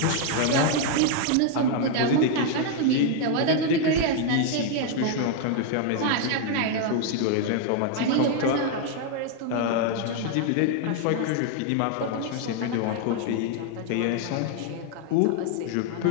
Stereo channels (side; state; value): both; different; correlation 0.00